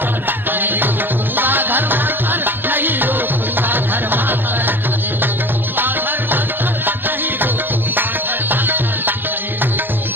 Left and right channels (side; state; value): left; late; 0.098 ms